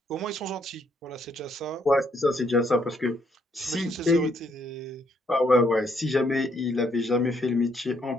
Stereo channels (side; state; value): both; normal; correlation 0.71